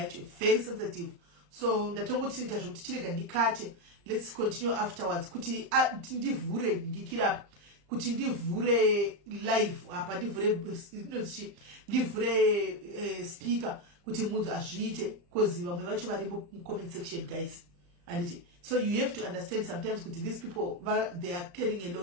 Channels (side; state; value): left; late; 35 ms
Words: actually, very sensitive. So let's continue afterwards. Kuti ndivhure ndikira kuti ndivhure live apa ndivhure speaker kuti munhu azviite cause vamwe vacho vari mu comment section guys. And so you have to understand sometimes kuti these people they are carrying a